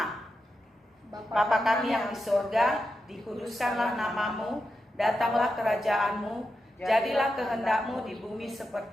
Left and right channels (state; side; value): normal; both; correlation 0.88